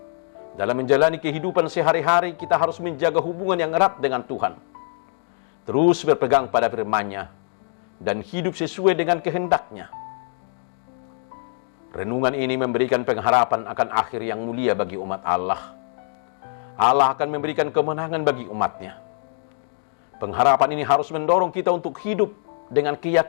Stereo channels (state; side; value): silent; right; digital silence